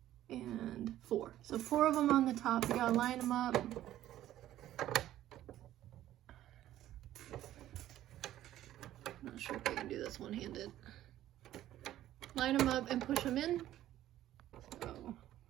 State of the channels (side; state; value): left; quieter; 13.2 dB